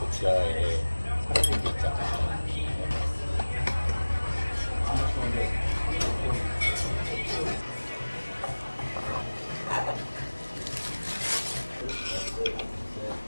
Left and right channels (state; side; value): inverted; both; correlation -1.00